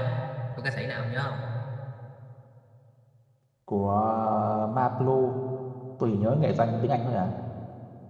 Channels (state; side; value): identical; both; correlation 1.00